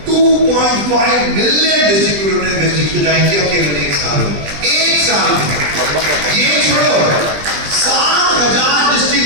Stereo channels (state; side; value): late; left; 20 ms